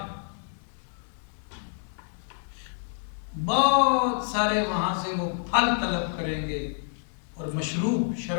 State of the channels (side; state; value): right; silent; digital silence